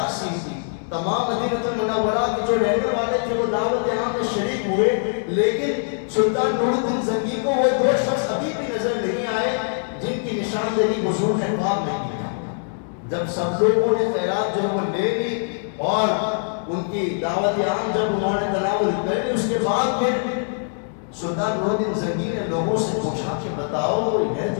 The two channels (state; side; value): silent; right; digital silence